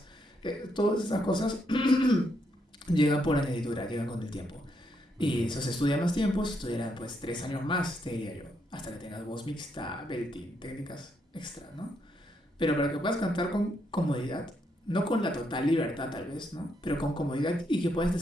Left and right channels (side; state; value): both; normal; correlation 0.77